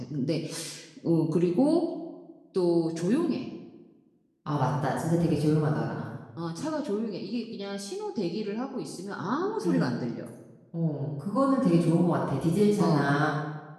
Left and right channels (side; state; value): both; identical; correlation 1.00